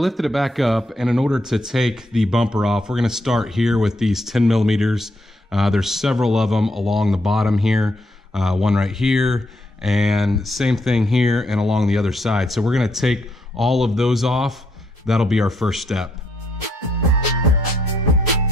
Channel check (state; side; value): normal; both; correlation 0.75